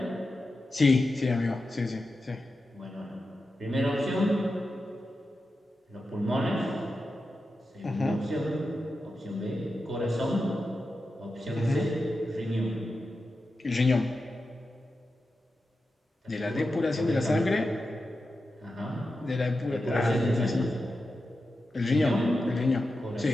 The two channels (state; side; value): normal; both; correlation 0.91